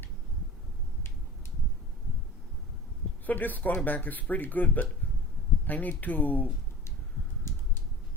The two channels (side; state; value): both; normal; correlation 0.38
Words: So this quarterback is pretty good, but I need to